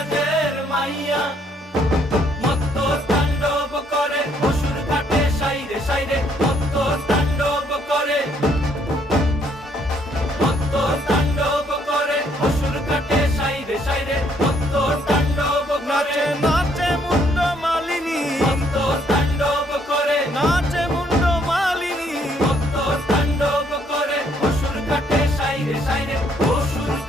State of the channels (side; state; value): both; normal; correlation 0.68